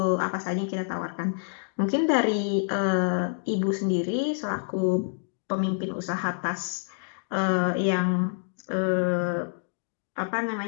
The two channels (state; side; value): silent; right; digital silence